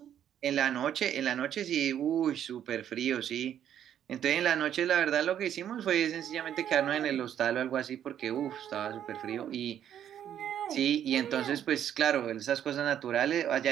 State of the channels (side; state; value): left; quieter; 10.0 dB